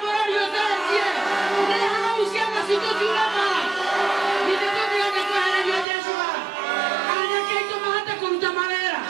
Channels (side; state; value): left; drops out; at 5.9 s